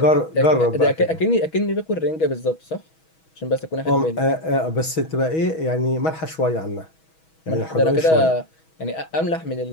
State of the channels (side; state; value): right; late; 6.2 ms